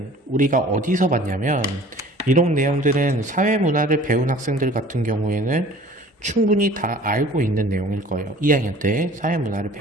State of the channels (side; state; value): both; normal; correlation 0.48